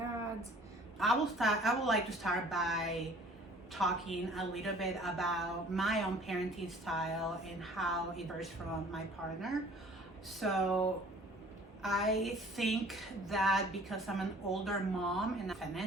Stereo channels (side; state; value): both; normal; correlation 0.51